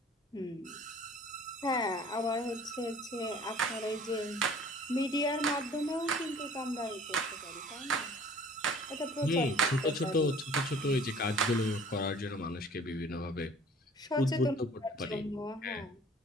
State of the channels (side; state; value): both; normal; correlation 0.50